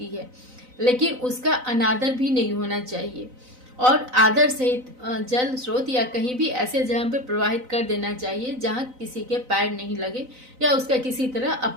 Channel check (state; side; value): late; left; 4.0 ms